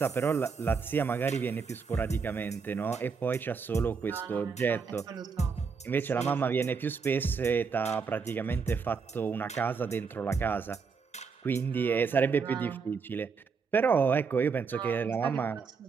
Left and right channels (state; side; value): quieter; left; 5.4 dB